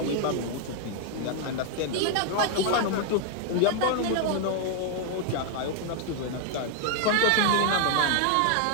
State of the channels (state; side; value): different; both; correlation 0.00